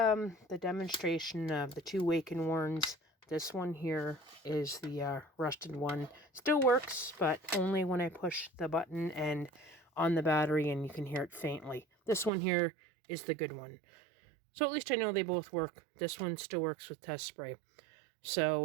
demonstration of the two wake and warns. This one here is the rusted one. Still works, but only when I push the button and on the battery, and you can hear it faintly. This one here is the good one. So at least I know they both work. This one still works with test spray.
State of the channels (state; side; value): drops out; left; at 12.3 s